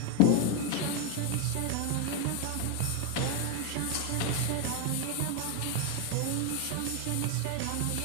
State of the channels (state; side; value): different; both; correlation 0.01